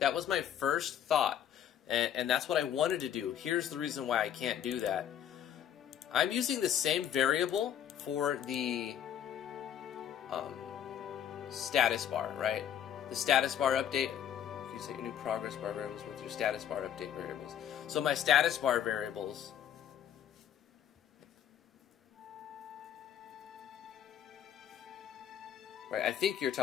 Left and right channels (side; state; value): right; quieter; 9.7 dB